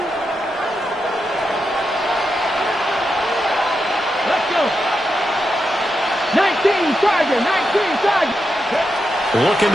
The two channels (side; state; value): left; noise; rumble, 30 dB below the sound